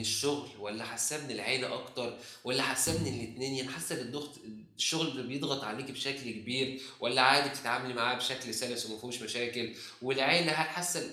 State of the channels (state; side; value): identical; both; correlation 1.00